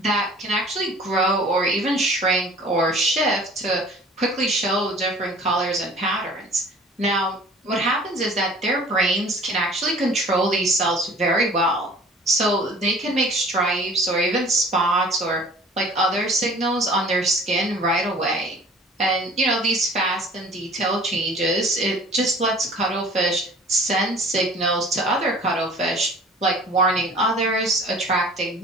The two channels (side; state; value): both; normal; correlation 0.48